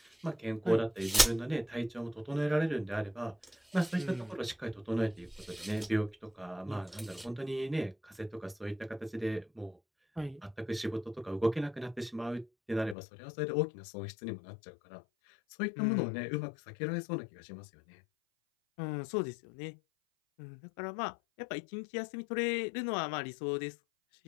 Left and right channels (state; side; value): drops out; right; at 13.0 s